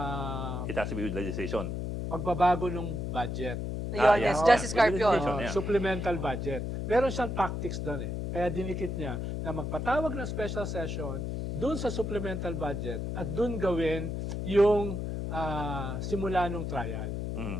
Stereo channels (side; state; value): left; noise; hum, 3 dB below the sound